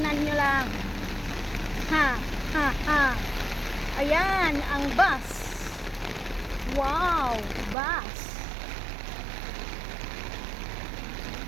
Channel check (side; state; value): left; drops out; at 7.8 s